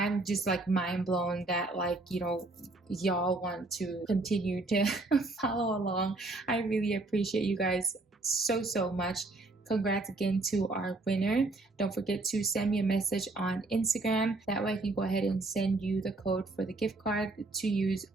just like mind blown that, like, you know, y'all want to continue to follow along. I really appreciate you guys so much. Congrats again to our winner. Don't forget to send me a message on Instagram. That way I can go ahead and send you the code for the gift card to use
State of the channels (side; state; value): left; quieter; 3.1 dB